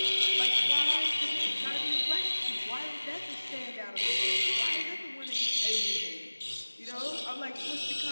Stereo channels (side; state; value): both; inverted; correlation -1.00